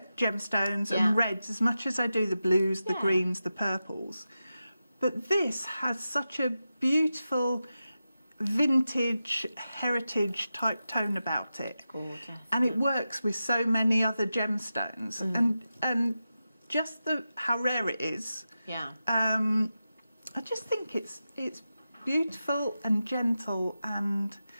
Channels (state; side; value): inverted; both; correlation -0.92